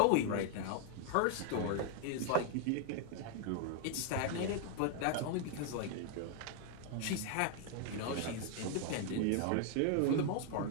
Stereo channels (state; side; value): different; both; correlation 0.00